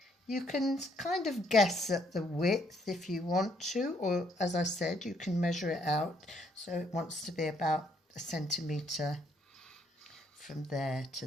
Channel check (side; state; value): both; normal; correlation 0.70